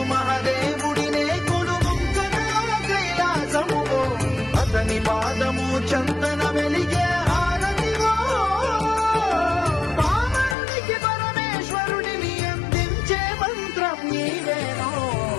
మహాదేవుడినే కొలుముంకనలో కైలాసమువో అతని పాదము చందన వెలిగే హారతివో పామరునికి పరమేశ్వరుడిని అందించే మంత్రం నీవేనో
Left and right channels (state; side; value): drops out; right; at 10.6 s